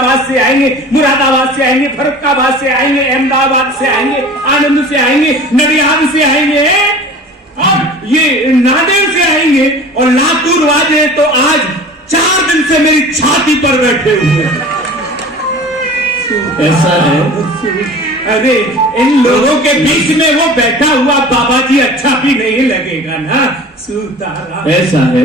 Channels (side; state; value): both; normal; correlation 0.41